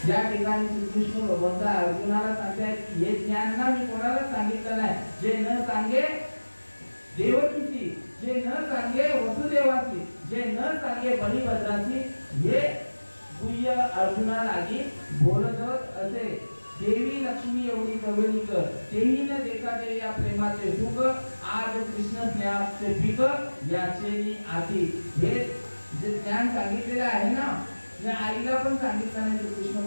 या ठिकाणी श्रीकृष्ण भगवंत अर्जुनाला सांगतायत की हे ज्ञान ना मी कोणाला सांगितलं नाही. जे न सांगे देवकीची, जे न सांगे वसुदेवाची, जे न सांगे बलिभद्राची, हे गुह्य अर्जुनाला बोलत असे. देवी लक्ष्मी एवढी जवळी कर, तेही न देखा दे या प्रेमाचे सुख, आज कृष्ण स्नेहाचे पीक याचे आती. हे जे ज्ञान सांगितलेलं आहे ना, या आईला पण सांगितलं नाही, तो कृष्ण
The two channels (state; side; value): inverted; both; correlation -1.00